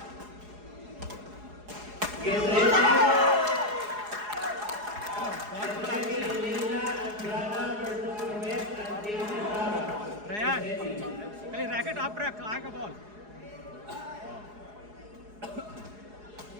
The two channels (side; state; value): left; late; 4.8 ms